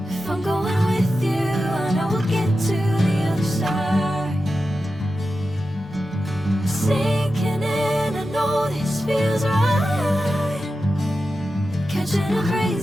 If I'm going with you, I know we'll get to the other side. Sinking in, I know this feels right. Catching a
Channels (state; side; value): normal; both; correlation 0.91